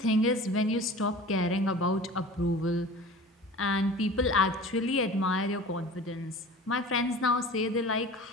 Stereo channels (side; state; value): both; normal; correlation 0.40